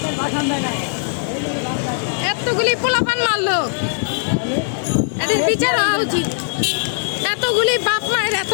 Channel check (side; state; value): right; silent; digital silence